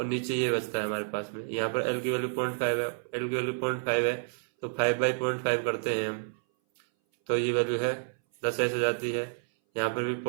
नीचे ये बचता है हमारे पास में। यहाँ पर L की वैल्यू 0.5 है, L की वैल्यू 0.5 है, तो 5/0.5 करते हैं हम, तो ये वैल्यू है 10 ऐसे जाती है। यहाँ पर भी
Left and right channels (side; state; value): left; silent; 58 dB below the other